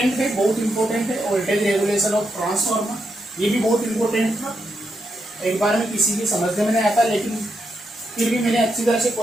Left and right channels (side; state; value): both; normal; correlation 0.83